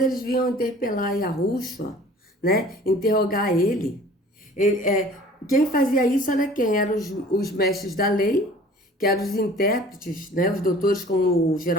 eles vinham interpelar Yahushua, né? Interrogar ele. Quem fazia isso era quem? Eram os mestres da lei, que eram os intérpretes, né? Os doutores, como o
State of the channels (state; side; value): normal; both; correlation 0.48